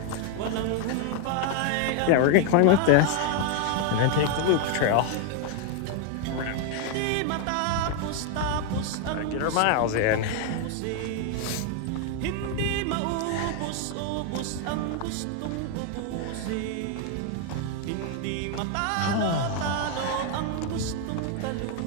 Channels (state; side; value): different; both; correlation 0.00